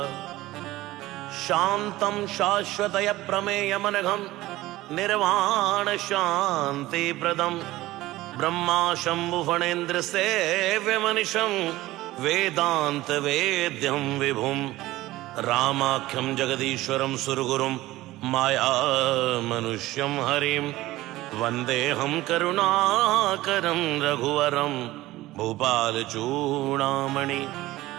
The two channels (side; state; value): left; quieter; 17.4 dB